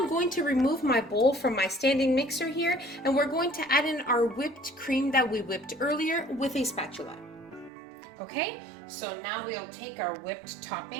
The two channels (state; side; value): drops out; left; at 7.7 s